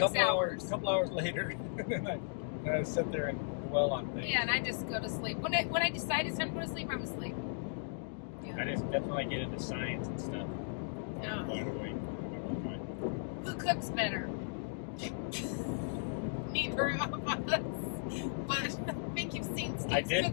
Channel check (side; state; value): right; silent; digital silence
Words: hours. A couple hours later, and then I sit there and dwell on things. Yeah, and I just go to sleep. When I decide it's time to go to sleep, I'm asleep. Yeah. That's when I get into science and stuff. Yeah. Wide awake. Who cooks better? Neither of us. But I think you've seen Steve's